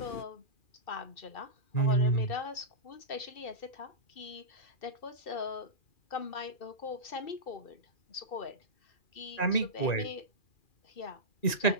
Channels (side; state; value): right; late; 2.4 ms